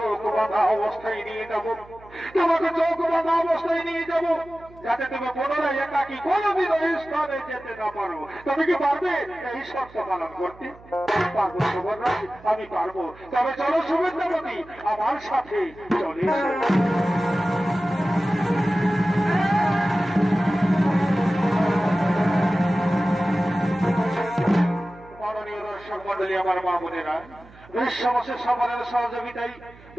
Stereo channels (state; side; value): noise; right; hum, 23 dB below the sound